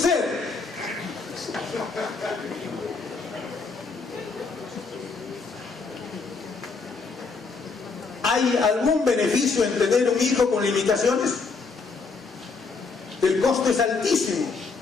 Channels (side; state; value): right; quieter; 4.5 dB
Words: ¿Hay algún beneficio en tener un hijo con limitaciones? El costo es altísimo.